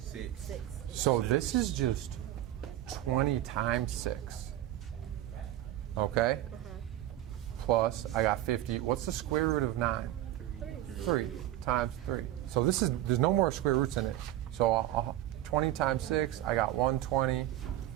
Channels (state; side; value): quieter; left; 13.7 dB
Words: So this is just 20 times 6. Okay? Plus, I got 50. What's the square root of 9? 3 times 3. So there's no more square roots in it. So 20 times 6, I got 120.